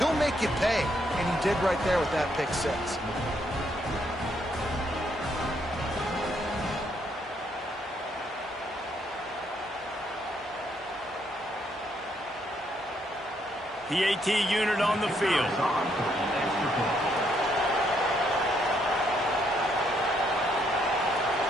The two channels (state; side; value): normal; both; correlation 0.73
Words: make you pay, and he did right there with that pick 6. The AT unit on the field.